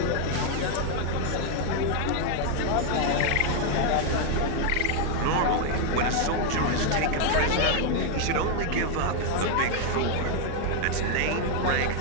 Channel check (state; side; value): different; both; correlation 0.00